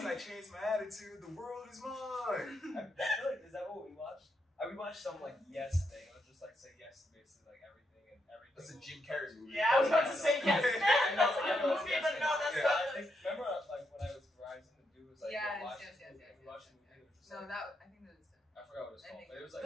I changed my attitude, the world is mine. I feel like, is that what we watched? We watched some like Yes thing. Let's just like say yes to basically like everything and everything. That's a Jim Carrey movie. Yeah, I was about to say yes, man. That's a good movie, but no, that's Yeah. not. I think, remember like when I was Verizon, the dude was like, Yes, watch yes, this yes, movie, yes, we watched yes, the movie, it was just No, like, I think that was done. I forgot what it was called, but it was like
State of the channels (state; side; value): normal; both; correlation 0.81